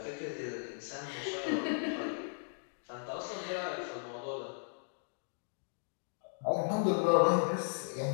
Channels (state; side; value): silent; right; digital silence